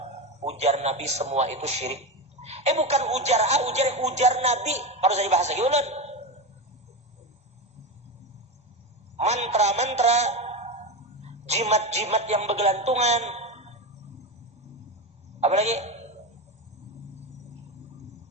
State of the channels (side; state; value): both; normal; correlation 0.18